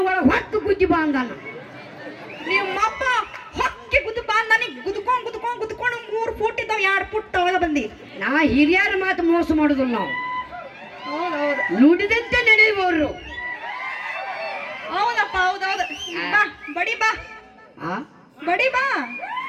ಒಳಗೆ ಹೊತ್ತು ಗುದ್ದಿ ಬಾಂದಾನ ನಿಮ್ಮಪ್ಪ ಹೊಕ್ಕೆ ಗುದ್ದು ಬಂದ್ ನನಗೆ ಗುದ್ಕೊಂಡು 3 ಫುಟ್ ಇದ್ದಾವ 2 ಫುಟ್ ಒಳಗ ಬಂದಿ ನಾ ಹಿರಿಯರ ಮಾತು ಮೋಸ ಮಾಡುದಿಲ್ಲ ನಾವು ಹೌದೌದು ನುಡಿದಂತೆ ನಡೆಯುವವರು ಹೌದಪ್ಪ ಹೌದೌದು ಬಾ ಬಡಿ ಬಾ ಆ ಬಡಿ ಬಾ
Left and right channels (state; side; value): identical; both; correlation 1.00